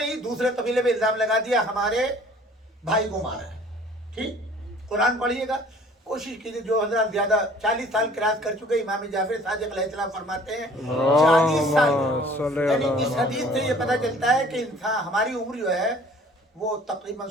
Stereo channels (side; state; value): both; normal; correlation 0.52